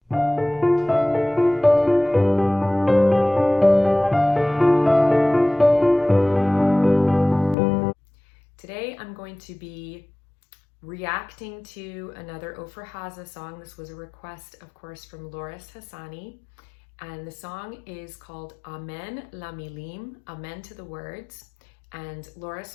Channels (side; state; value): right; drops out; at 7.6 s